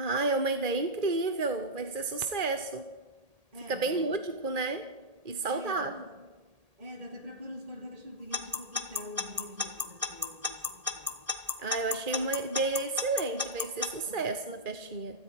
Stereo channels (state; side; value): late; left; 1.8 ms